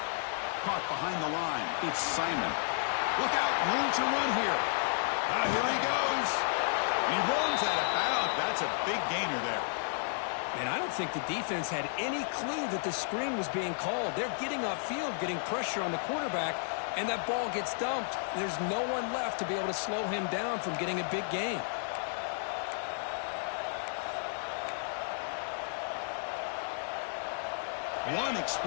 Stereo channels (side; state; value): right; silent; digital silence